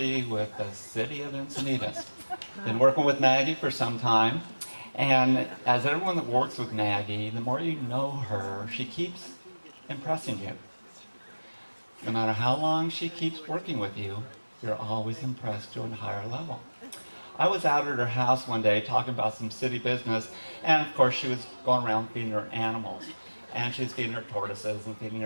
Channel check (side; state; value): both; inverted; correlation -1.00